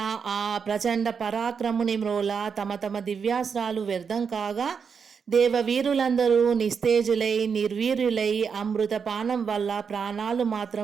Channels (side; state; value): left; quieter; 6.2 dB